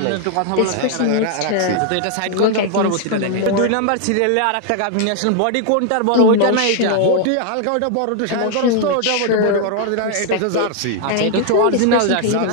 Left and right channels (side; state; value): both; different; correlation 0.00